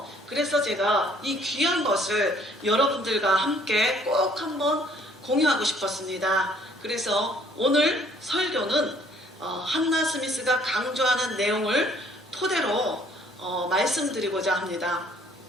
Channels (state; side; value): normal; both; correlation 0.60